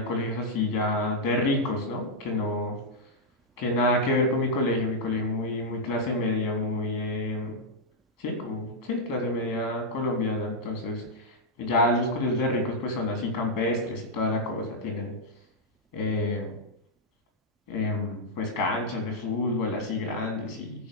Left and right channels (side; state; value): both; normal; correlation -0.05